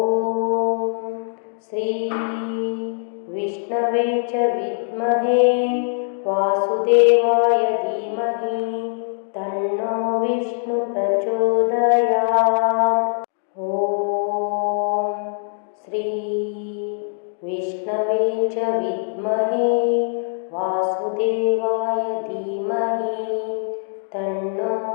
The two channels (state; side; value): silent; right; digital silence